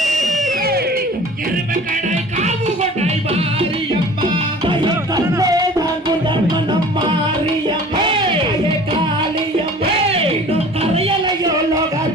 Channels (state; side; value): normal; both; correlation 0.45